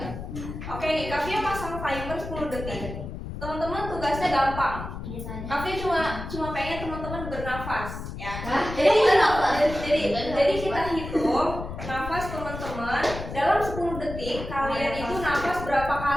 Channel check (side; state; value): left; noise; rumble, 8 dB below the sound